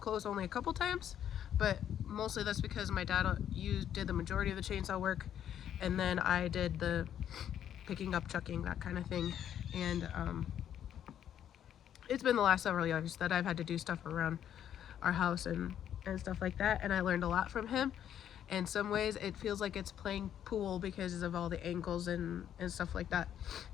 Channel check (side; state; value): right; quieter; 10.0 dB